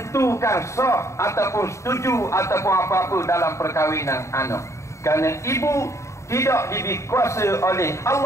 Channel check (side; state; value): right; late; 0.14 ms